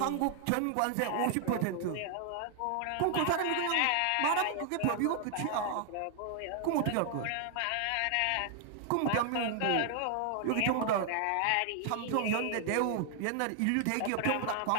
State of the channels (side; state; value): both; different; correlation 0.00